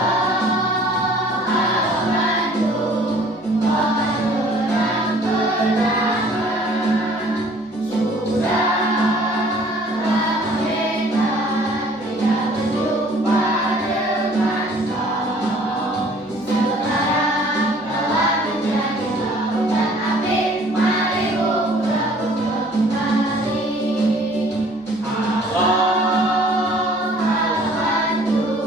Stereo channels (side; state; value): left; noise; hum, 29 dB below the sound